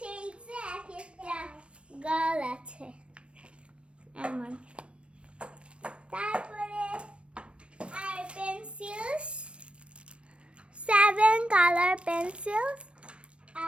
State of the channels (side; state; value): left; late; 0.059 ms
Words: এক একটা গার্ল আছে এমন। তারপরে আর পেন্সিলস, 7 কালার পেন্সিলস,